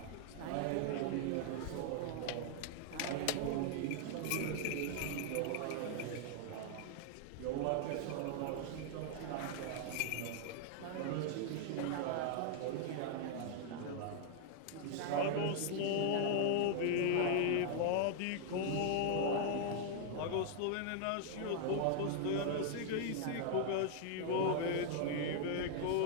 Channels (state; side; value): different; both; correlation 0.00